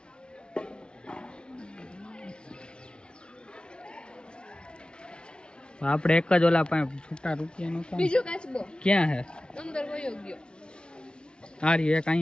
આપણે એક જ ઓલા પાસે છૂટા રૂપિયાનું કામ. બીજો કાચબો ક્યાં હે? અંદર વયો ગયો. આ રહ્યો એક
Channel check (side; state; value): right; late; 0.054 ms